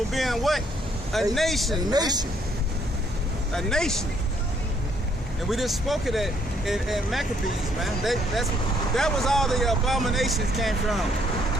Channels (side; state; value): both; normal; correlation 0.68